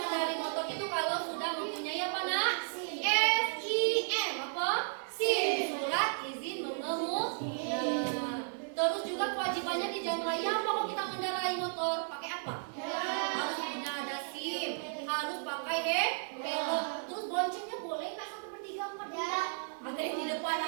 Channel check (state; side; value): silent; left; digital silence